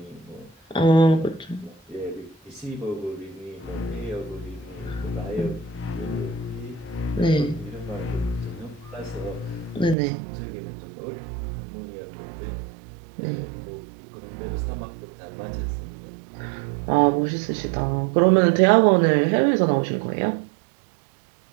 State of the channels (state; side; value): drops out; left; at 10.0 s